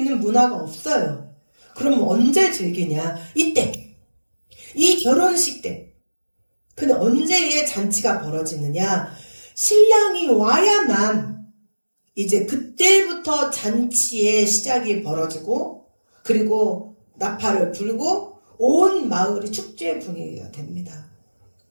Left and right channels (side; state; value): both; inverted; correlation -1.00